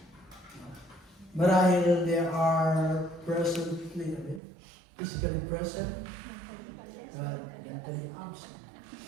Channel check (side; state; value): left; drops out; at 4.4 s